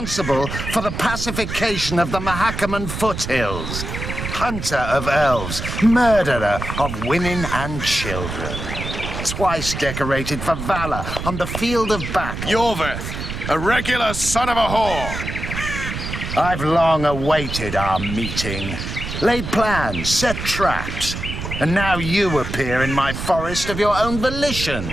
for the pacification of the Mahakaman foothills, hunter of elves, murderer of women and children, twice decorated for valor on the field of battle. Yorveth, a regular son of a whore! I've long awaited our meeting. Laid plans, set traps, and now you appear in my forest of your own volition.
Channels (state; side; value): noise; right; rumble, 6 dB below the sound